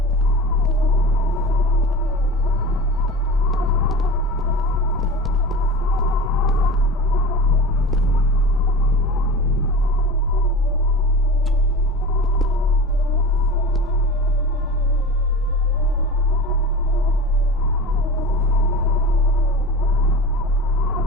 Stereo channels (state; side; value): normal; both; correlation 0.32